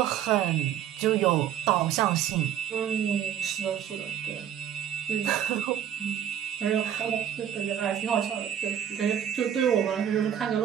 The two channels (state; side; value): quieter; left; 9.9 dB